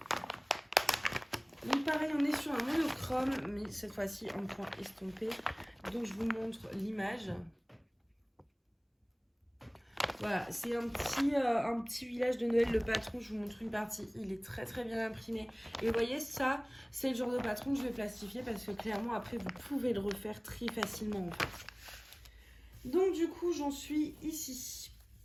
Donc pareil, on est sur un monochrome, mais cette fois-ci en point estompé. Donc je vous montre l'image. Voilà, c'est un petit village de Noël, le patron, je vous montre une partie, il est très très bien imprimé. Et vous voyez, ça, c'est le genre de patron que je vais plastifier parce que clairement, après, vous pouvez le refaire très facilement en fait. Donc du coup, j'en suis ici.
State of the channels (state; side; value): identical; both; correlation 1.00